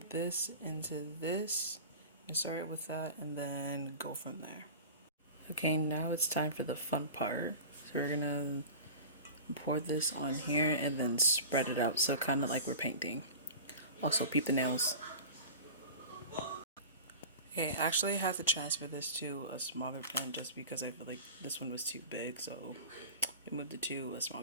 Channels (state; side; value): inverted; both; correlation -0.34